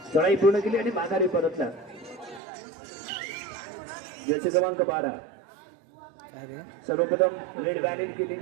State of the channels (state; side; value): drops out; left; at 2.4 s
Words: चढाई पूर्ण केली आणि माघारी परतला. जर्सी क्रमांक 12 सर्वप्रथम रेड बॅलेन केली,